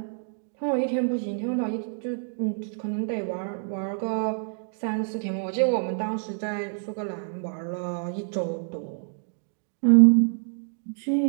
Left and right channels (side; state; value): left; silent; 60 dB below the other